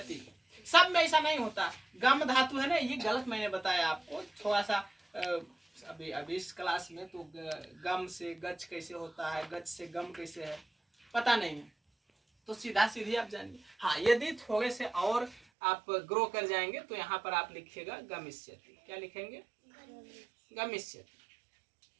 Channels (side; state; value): left; drops out; at 15.4 s